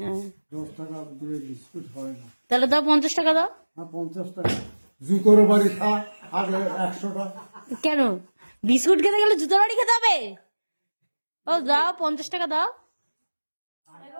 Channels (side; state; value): both; inverted; correlation -1.00